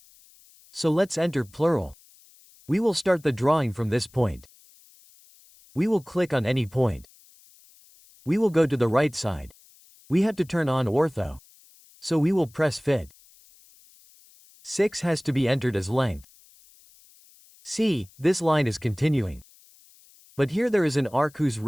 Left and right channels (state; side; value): noise; left; hiss, 27 dB below the sound